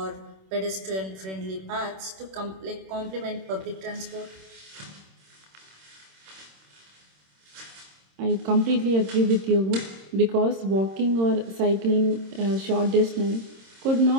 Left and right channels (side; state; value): left; late; 26 ms